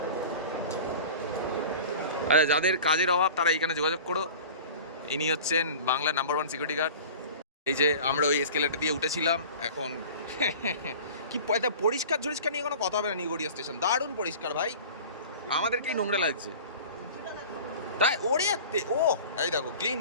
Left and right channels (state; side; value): inverted; both; correlation -0.39